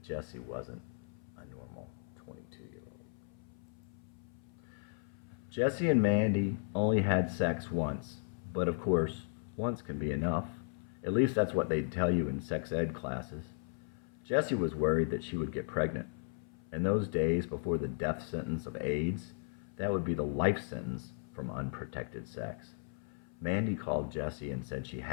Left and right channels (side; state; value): right; silent; 54 dB below the other